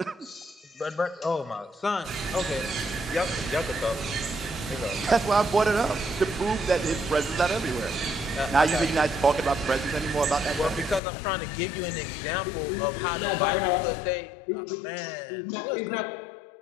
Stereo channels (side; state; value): right; drops out; at 11.0 s